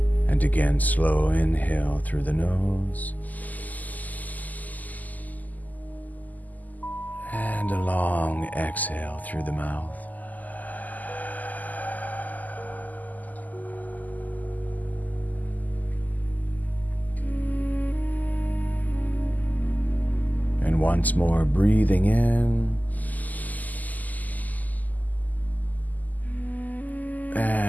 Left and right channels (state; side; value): late; right; 0.081 ms